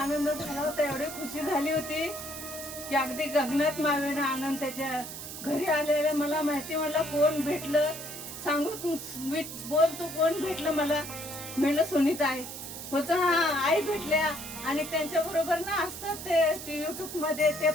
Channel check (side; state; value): right; noise; hiss, 10 dB below the sound